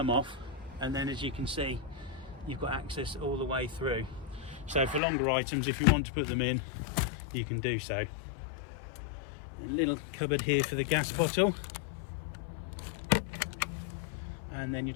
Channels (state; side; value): drops out; right; at 5.0 s